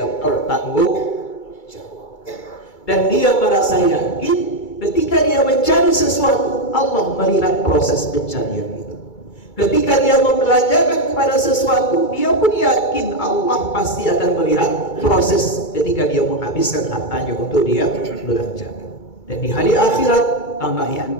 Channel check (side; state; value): right; late; 2.3 ms